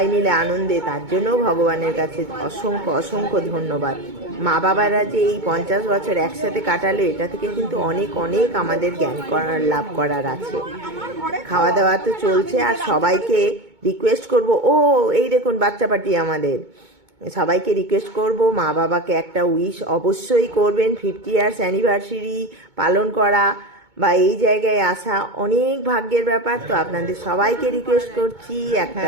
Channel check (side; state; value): left; late; 2.2 ms